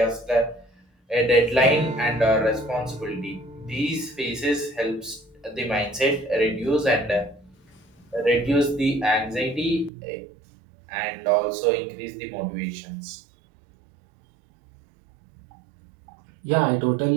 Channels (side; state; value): left; drops out; at 9.9 s